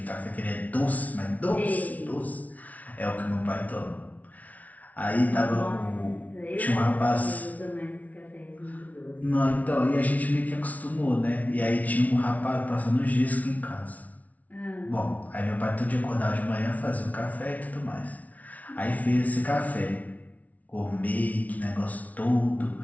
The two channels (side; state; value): right; late; 0.071 ms